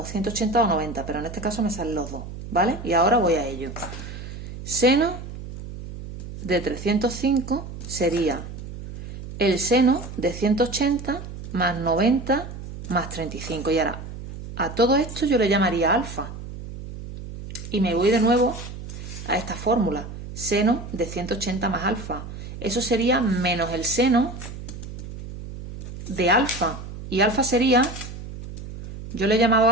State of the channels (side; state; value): right; noise; hum, 11 dB below the sound